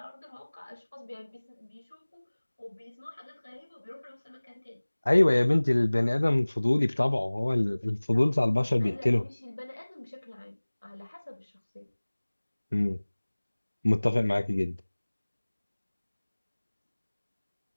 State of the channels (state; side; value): inverted; both; correlation -1.00